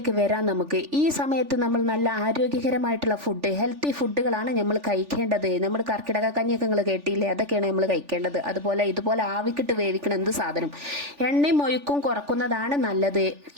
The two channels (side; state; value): left; late; 3.4 ms